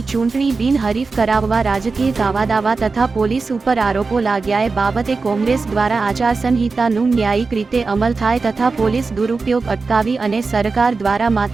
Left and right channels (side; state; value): left; quieter; 4.2 dB